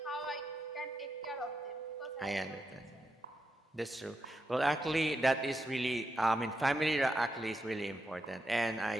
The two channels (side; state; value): both; normal; correlation 0.85